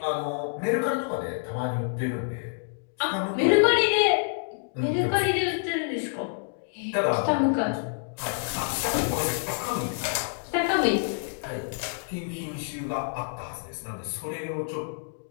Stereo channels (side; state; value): right; silent; digital silence